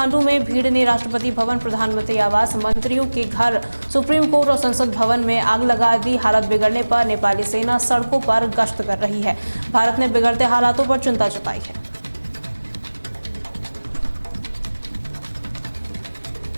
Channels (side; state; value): both; inverted; correlation -1.00